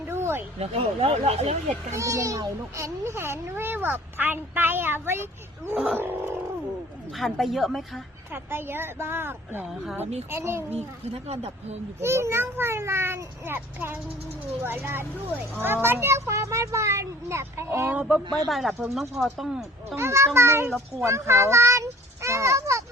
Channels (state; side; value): normal; both; correlation 0.51